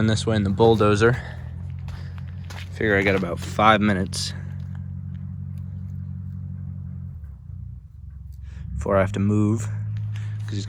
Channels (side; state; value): both; identical; correlation 1.00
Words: this way in the bulldozer. Figure I got about 5 minutes before I have to move, because he's